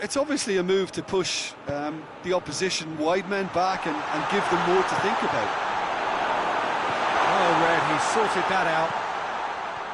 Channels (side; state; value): both; identical; correlation 1.00